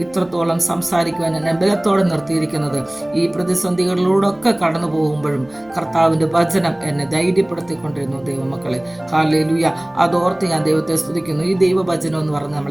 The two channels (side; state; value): right; noise; hum, 30 dB below the sound